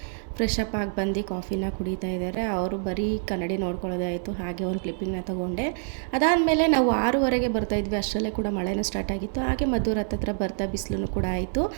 ಫ್ರೆಶ್ ಅಪ್ ಆಗಿ ಬಂದು ಕಾಫಿನ ಕುಡಿತಾ ಇದ್ದಾರೆ. ಅವರು ಬರೀ ಕನ್ನಡಿ ನೋಡ್ಕೊಳ್ಳೋದಾಯಿತು. ಹಾಗೆ ಒಂದು ಕ್ಲಿಪ್ಪಿಂಗ್ನ ತೊಗೊಂಡೆ. ಅದಾದಮೇಲೆ ನಾವು 6:15ಗೆ ಬರ್ತಾಯಿದ್ವಿ. ಅಷ್ಟರಲ್ಲೇ ಕೂಡ ಮಳೆನೂ ಸ್ಟಾರ್ಟ್ ಆಗಿತ್ತು. ಹಾಗೆ ಮದ್ದೂರು ಹತ್ರ ಬರ್ತಾ ಬಿಸಿಲು ಕೂಡ ಆಯಿತು.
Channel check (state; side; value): silent; left; digital silence